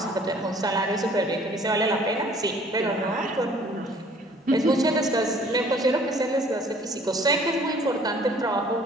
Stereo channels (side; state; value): both; normal; correlation 0.55